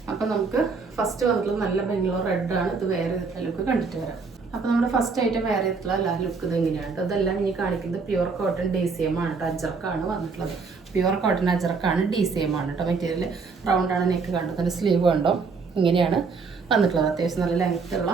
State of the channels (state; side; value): quieter; left; 4.7 dB